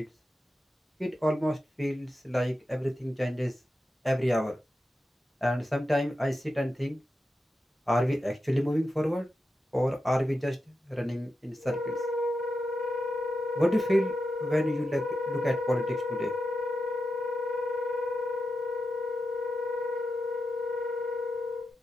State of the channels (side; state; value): both; normal; correlation 0.89